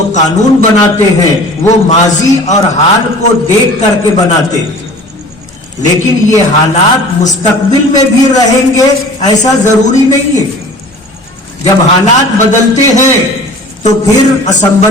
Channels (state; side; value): normal; both; correlation 0.44